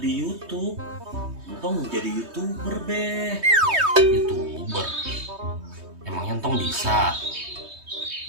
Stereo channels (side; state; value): left; late; 3.2 ms